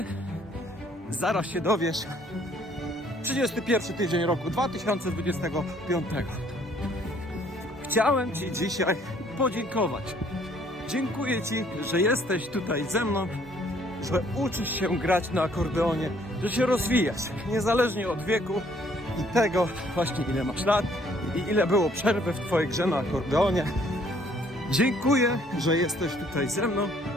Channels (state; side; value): normal; both; correlation 0.62